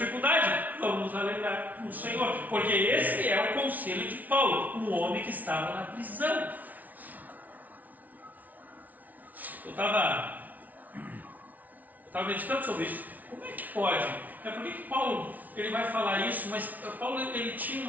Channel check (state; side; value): late; left; 0.076 ms